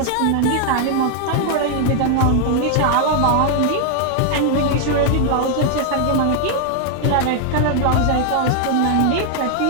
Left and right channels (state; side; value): different; both; correlation 0.00